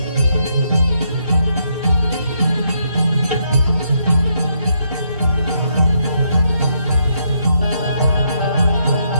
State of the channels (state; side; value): inverted; both; correlation -0.76